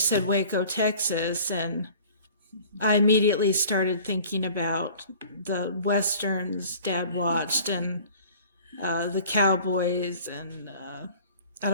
Waco, Texas, and I immediately started thinking about the westerns Dad watched and the Cowboys, and I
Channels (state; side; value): inverted; both; correlation -0.47